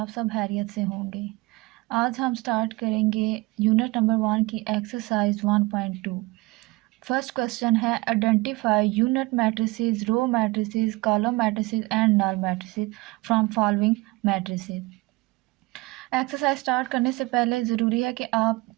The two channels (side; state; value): left; quieter; 22.0 dB